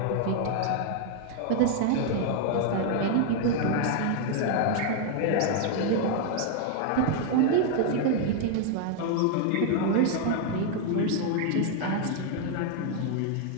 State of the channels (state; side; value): different; both; correlation 0.00